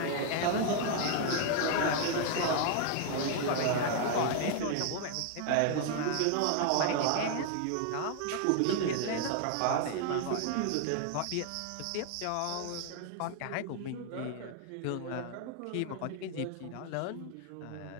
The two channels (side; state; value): both; different; correlation 0.00